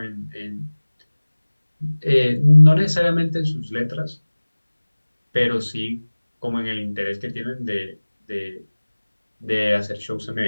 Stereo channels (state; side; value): inverted; both; correlation -1.00